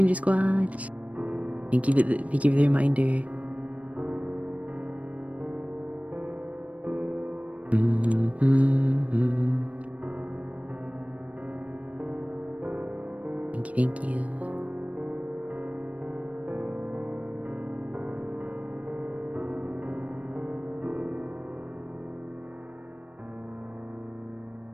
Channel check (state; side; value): late; left; 0.067 ms